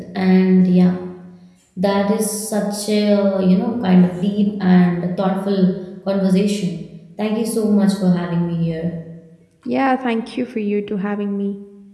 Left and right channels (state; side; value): identical; both; correlation 1.00